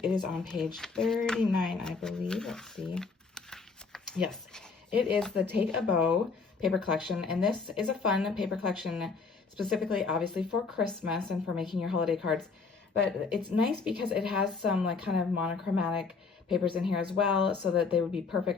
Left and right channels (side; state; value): right; quieter; 4.7 dB